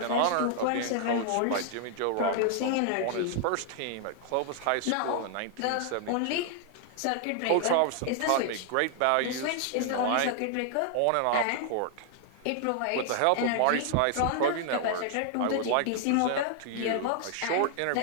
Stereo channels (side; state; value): both; different; correlation 0.00